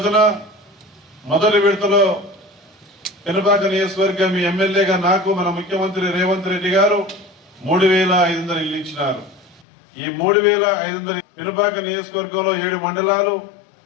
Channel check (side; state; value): right; drops out; at 9.6 s